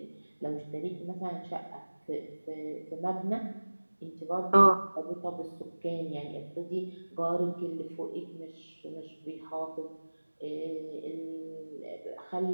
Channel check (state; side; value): inverted; both; correlation -1.00